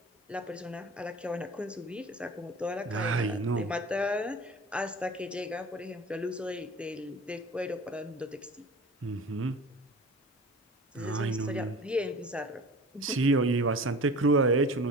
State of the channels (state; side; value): normal; both; correlation 0.39